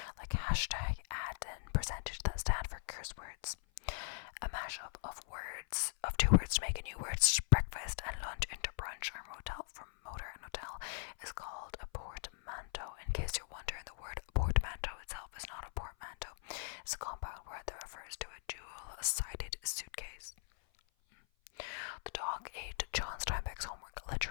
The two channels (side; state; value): right; silent; 51 dB below the other